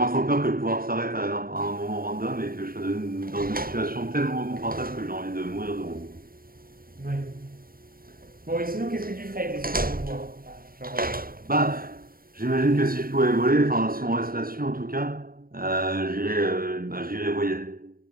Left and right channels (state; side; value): late; left; 0.42 ms